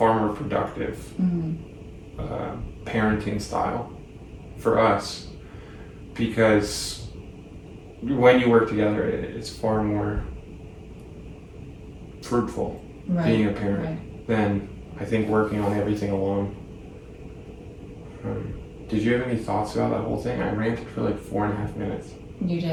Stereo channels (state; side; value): identical; both; correlation 1.00